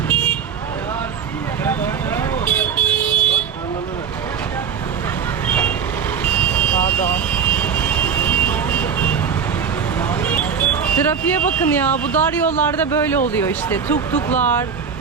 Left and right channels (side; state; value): left; quieter; 6.9 dB